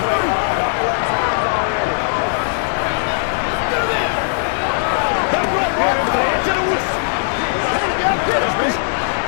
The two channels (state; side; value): silent; right; 57 dB below the other